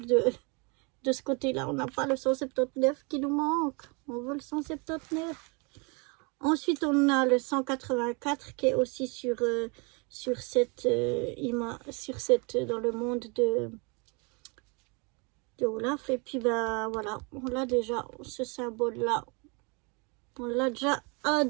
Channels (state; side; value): quieter; left; 31.7 dB